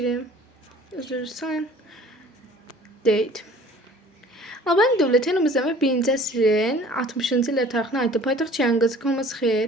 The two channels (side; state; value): both; normal; correlation 0.49